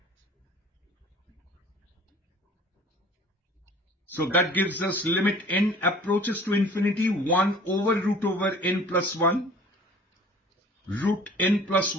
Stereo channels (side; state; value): both; normal; correlation 0.48